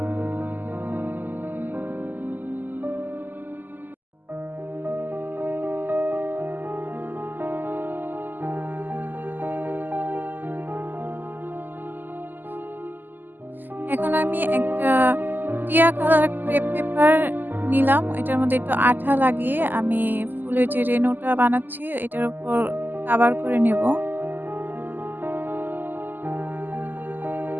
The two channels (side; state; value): left; late; 0.088 ms